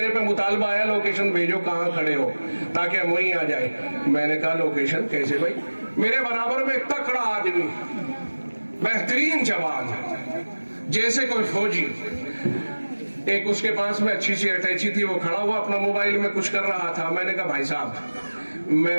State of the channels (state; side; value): inverted; both; correlation -1.00